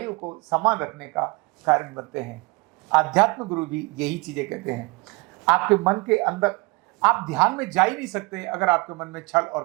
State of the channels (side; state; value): left; quieter; 26.7 dB